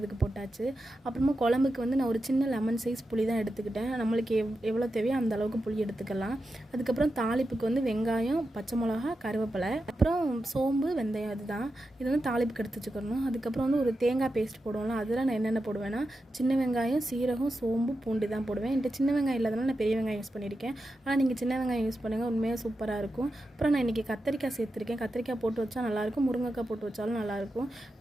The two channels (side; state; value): both; normal; correlation 0.90